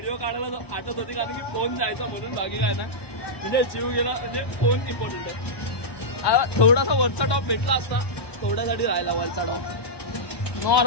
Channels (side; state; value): right; late; 1.1 ms